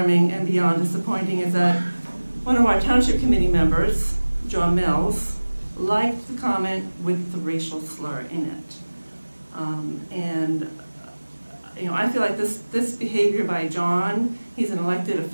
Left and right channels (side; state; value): both; inverted; correlation -1.00